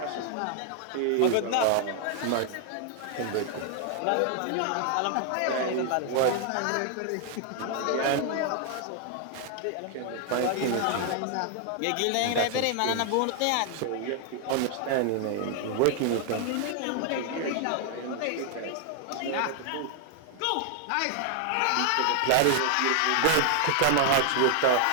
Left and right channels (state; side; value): different; both; correlation 0.00